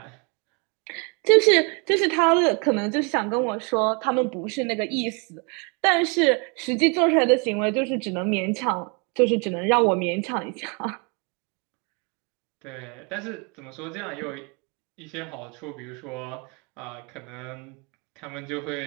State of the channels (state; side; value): quieter; left; 33.4 dB